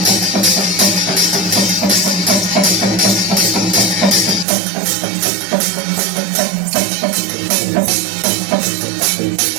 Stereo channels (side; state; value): left; drops out; at 4.5 s